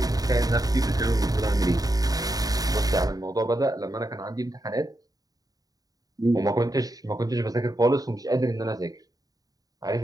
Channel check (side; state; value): left; late; 0.18 ms